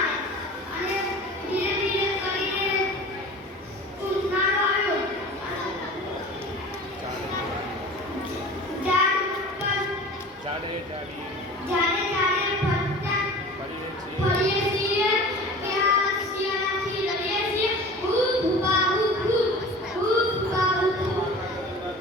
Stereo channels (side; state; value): both; normal; correlation 0.39